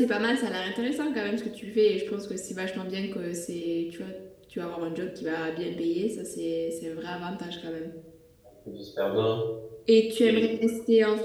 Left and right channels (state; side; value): identical; both; correlation 1.00